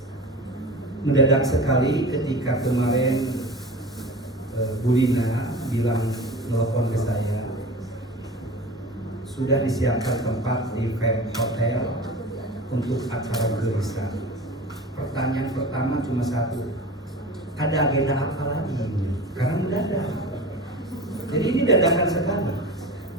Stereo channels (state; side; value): normal; both; correlation 0.35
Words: Mendadak sekali ketika kemarin Bu Lina bilang, nelfon ke saya, sudah disiapkan tempat di Fem Hotel untuk acara gereja. Pertanyaan pertama cuma satu, ada agenda apa lagi? Karena mendadak. Jadi ini dadakan sekali.